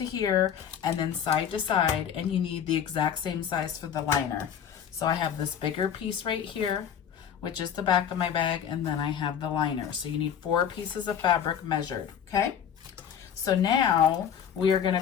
here and then side to side, and you need the exact same size for the liner. So I have this bigger piece right here, which is the back of my bag, and then I have the liner. So you need 4 pieces of fabric measured, okay? So now we are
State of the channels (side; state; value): right; quieter; 8.6 dB